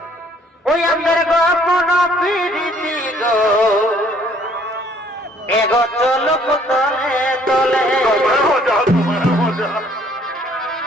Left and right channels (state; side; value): normal; both; correlation 0.61